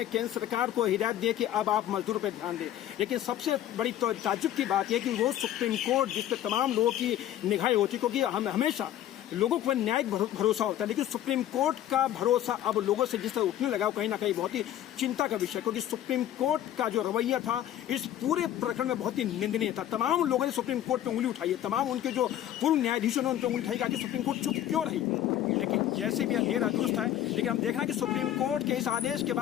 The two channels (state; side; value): quieter; right; 12.0 dB